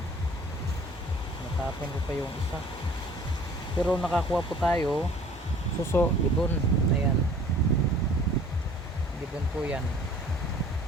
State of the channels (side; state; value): both; normal; correlation 0.51